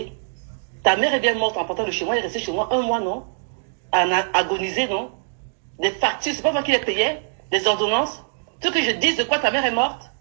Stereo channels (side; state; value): left; silent; digital silence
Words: Ta mère est bien morte en partant de chez moi, elle est restée chez moi 1 mois, non? À agoniser, non? Des factures, c'est pas moi qui les payais, des ordonnances. Ce que je dis de quoi ta mère est morte,